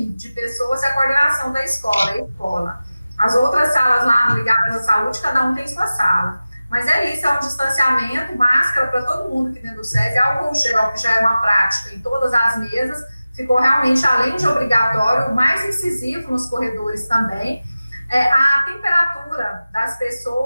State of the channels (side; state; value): both; inverted; correlation -0.96